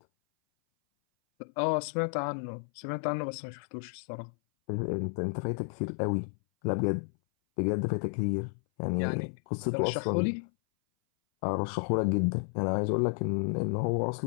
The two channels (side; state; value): right; silent; 57 dB below the other